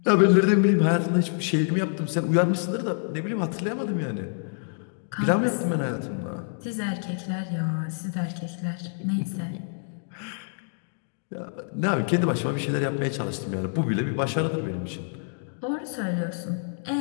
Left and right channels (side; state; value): right; silent; digital silence